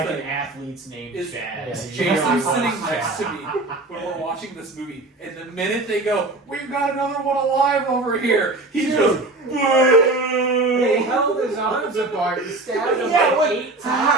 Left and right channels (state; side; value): quieter; left; 3.0 dB